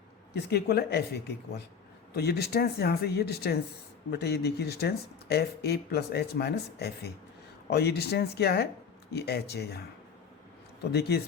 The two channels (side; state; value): right; quieter; 6.4 dB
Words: किसके इक्वल है? एफ ए के इक्वल। तो ये डिस्टेंस यहाँ से ये डिस्टेंस बेटे ये देखिए distance F A plus H minus F ए, और ये डिस्टेंस क्या है? ये एच है यहाँ। तो देखिए